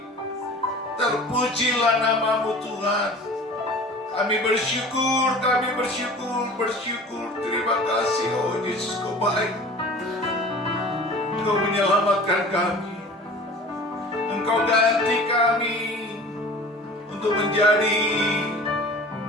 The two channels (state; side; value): normal; both; correlation 0.42